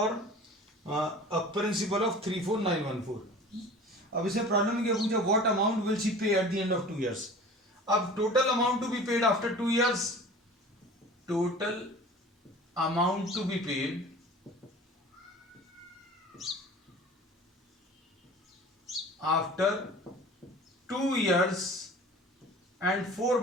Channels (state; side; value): normal; both; correlation 0.41